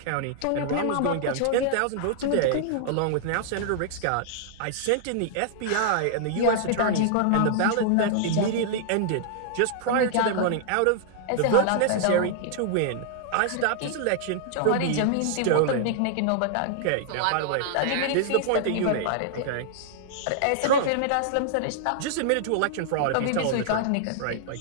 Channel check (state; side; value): different; both; correlation -0.01